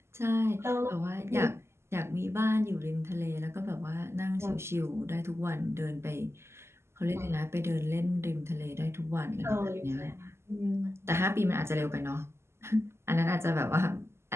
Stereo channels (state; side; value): late; left; 0.12 ms